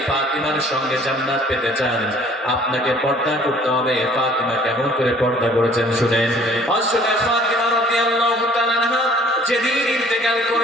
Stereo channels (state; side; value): normal; both; correlation 0.55